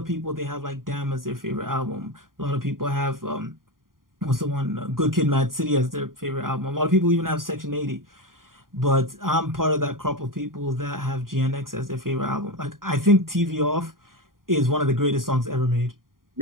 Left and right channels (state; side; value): late; left; 0.91 ms